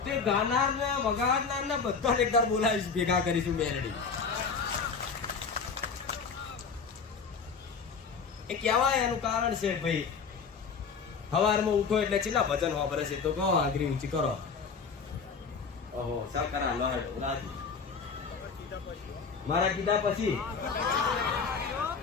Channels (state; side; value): quieter; right; 5.4 dB